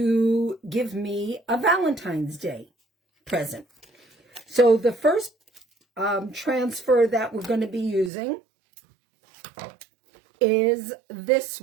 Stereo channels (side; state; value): left; drops out; at 8.1 s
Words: give me a Valentine's Day present. So the first transfer that we're going to be using is this